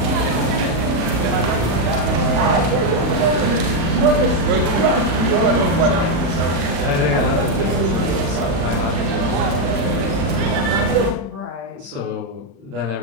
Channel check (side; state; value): left; late; 35 ms